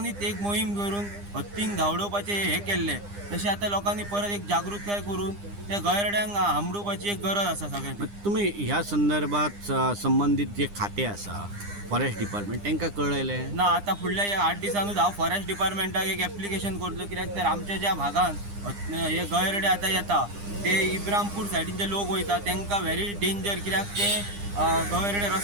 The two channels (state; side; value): late; left; 9.9 ms